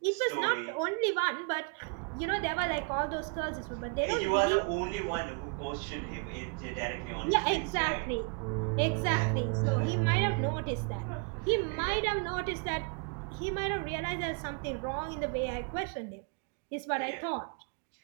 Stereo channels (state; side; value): quieter; left; 36.7 dB